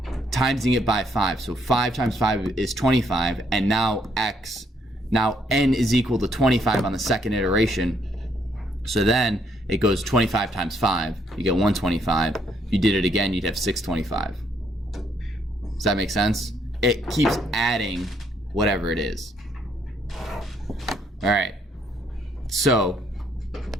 timesing it by 5. So 5 times 5 is 25, and now n is equal to 25 on the second iteration. So then it goes 25 times 5. You get 125. If you did it again, you'd have 625. Does that make sense? It keeps adding whatever it is. All right. So,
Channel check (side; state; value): both; normal; correlation 0.70